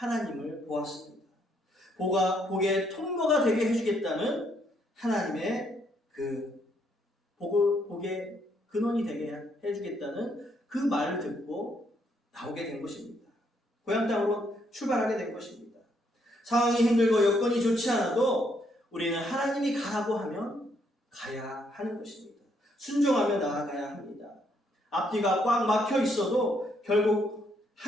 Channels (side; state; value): both; normal; correlation 0.72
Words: 보았습니다. 복의 통로가 되게 해주겠다는 하나님의 복의 근원이 되게 해주겠다는 그 말을 듣고 나오게 된 것입니다. 고향 땅으로 출발하게 된 것입니다. 상황이 힘들고 여건이 좋지 않아도 우리는 하나님이 가라고 하면 가야 하는 것입니다. 순종하며 나아가야 합니다. 앞뒤가 꽉 막혀 있어도 결국